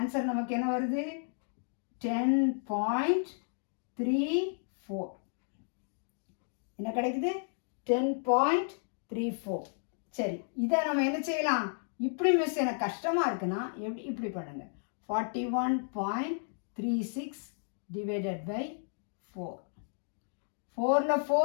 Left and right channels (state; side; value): silent; right; digital silence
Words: நமக்கு என்ன வருது 10.34 என்ன கிடைக்குது 10.34 சரி இதை நம்ம என்ன செய்யலாம் இப்படி மிஸ் எனக்கு கஷ்டமாக இருக்குன்னா எப்படி இப்படி பண்ணுங்க 41.36 டிவைடட் பை 4 4ல்